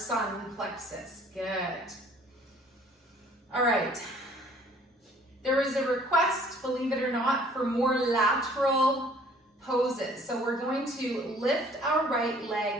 plexus. Good. All right. There is a request, believe it or not, for more lateral poses. So we're going to lift our right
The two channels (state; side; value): normal; both; correlation 0.56